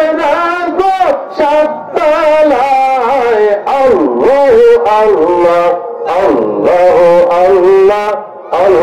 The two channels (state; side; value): identical; both; correlation 1.00